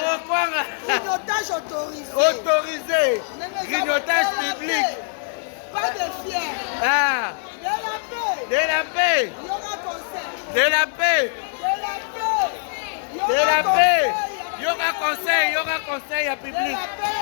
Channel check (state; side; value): silent; right; 64 dB below the other